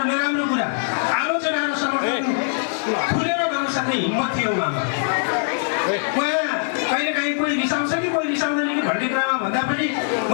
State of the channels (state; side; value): silent; right; digital silence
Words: नराम्रो कुरा आलोचना र समर्थन खुलेर गर्न सक्ने हिम्मत थियो उहाँमा। उहाँ कहिलेकाहीँ कोही रिसाउँछ कि कोही रिसाउँदैन कि भन्ने कुरामा भन्दा पनि